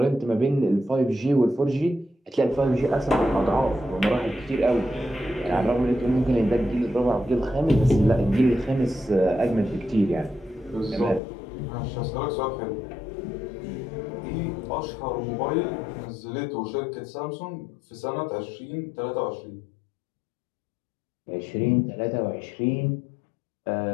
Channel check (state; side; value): drops out; right; at 11.2 s